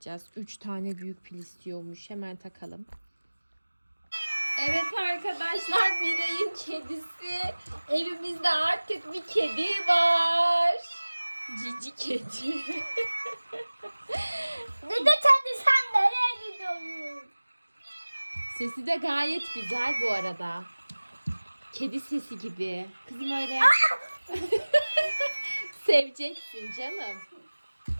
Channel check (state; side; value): inverted; both; correlation -1.00